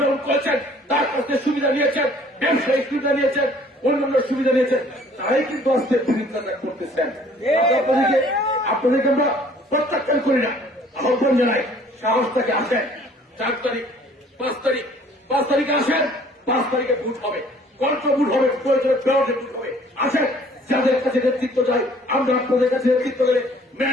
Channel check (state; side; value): normal; both; correlation 0.56